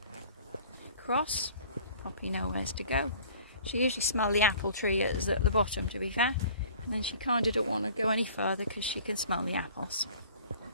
cross. Poppy knows to go. She usually smells the apple tree at the bottom, to be fair. And then she kind of don't want to go any further because she can smell the apples.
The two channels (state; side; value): inverted; both; correlation -0.49